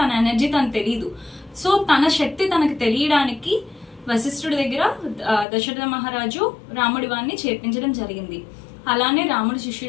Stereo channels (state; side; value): drops out; right; at 5.5 s